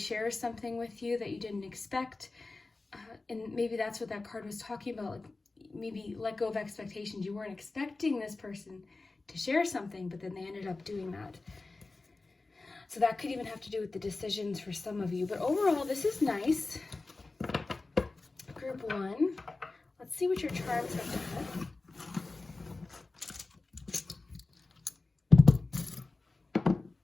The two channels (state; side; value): quieter; right; 3.5 dB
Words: something with you that you didn't expect. And maybe that's what that card was talking about. Like maybe let go of expectations. You weren't expecting this person to share something, but then they ended up doing that. So that could even have to do with the decisions for some of you. But overall, this is nice. Group 1. Let's see what your charms have to have.